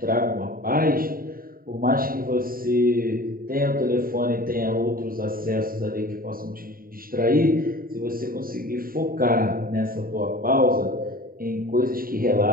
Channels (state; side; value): late; left; 0.42 ms